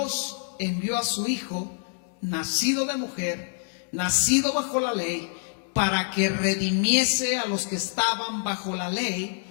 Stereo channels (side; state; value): right; silent; 61 dB below the other